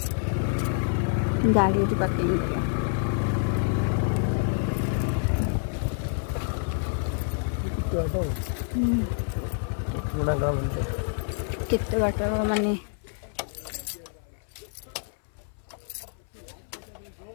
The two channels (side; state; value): right; silent; 57 dB below the other